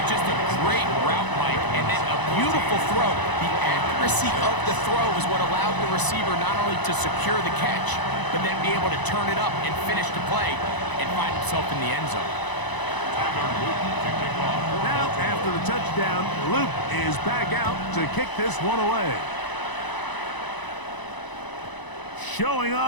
just a great route, Mike, and then a beautiful throw. The accuracy of the throw is what allowed the receiver not only to secure the catch, but then be able to turn it up and finish the play and find himself in the end zone. Now, after the touchdown, Luke is back out to kick this one away. Showing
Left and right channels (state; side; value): late; right; 1.0 ms